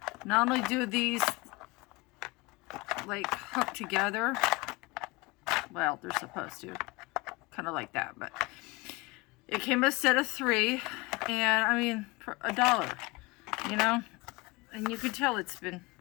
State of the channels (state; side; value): quieter; right; 24.4 dB